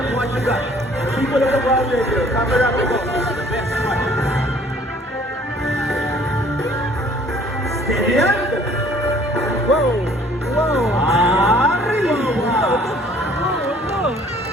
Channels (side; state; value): both; normal; correlation 0.56